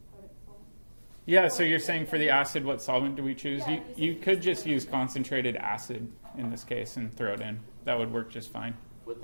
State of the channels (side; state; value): both; inverted; correlation -1.00